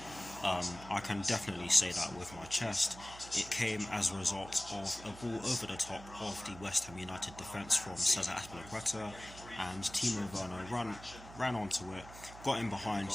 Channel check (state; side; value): noise; right; hum, 16 dB below the sound